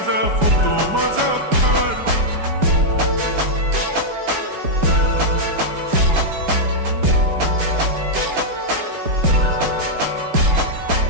फोटो माझा काढ.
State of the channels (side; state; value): left; late; 5.0 ms